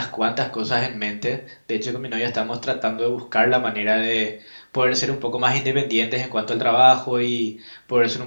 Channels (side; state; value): both; inverted; correlation -1.00